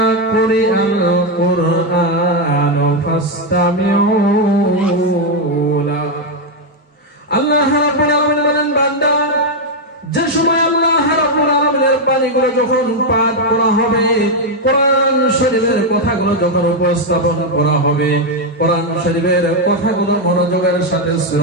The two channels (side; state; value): both; normal; correlation 0.03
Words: কুরিআল কুরআনু ফাসতামিউ লা। আল্লাহ রাব্বুল আলামিন বলেন বান্দা যে সময় আল্লাহ রাব্বুল আলামিনের বাণীগুলো যখন পাঠ করা হবে, কোরআন শরীফের কথাগুলো যখন উপস্থাপন করা হবে, কোরআন শরীফের কথাগুলো মনোযোগের সাথে